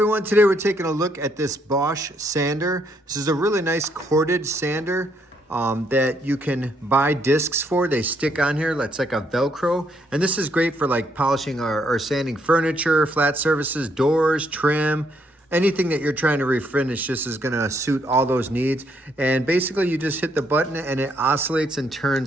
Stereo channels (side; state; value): both; normal; correlation 0.73